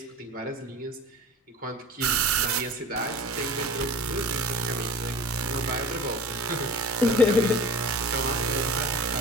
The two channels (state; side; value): normal; both; correlation 0.38